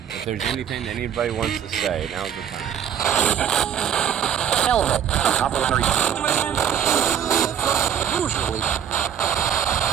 If there's anything that anybody wants to say, now's the time.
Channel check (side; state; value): left; quieter; 9.1 dB